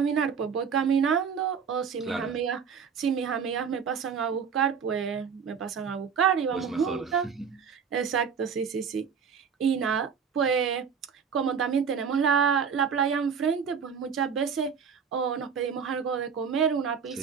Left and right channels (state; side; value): quieter; left; 6.6 dB